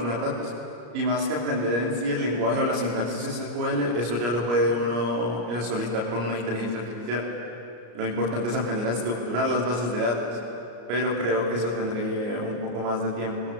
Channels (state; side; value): late; left; 34 ms